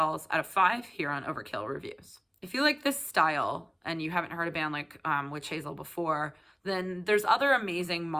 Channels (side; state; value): both; identical; correlation 1.00